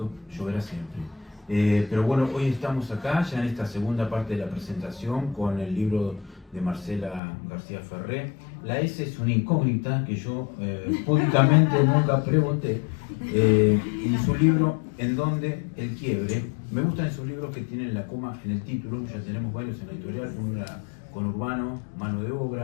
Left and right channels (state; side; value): drops out; right; at 7.2 s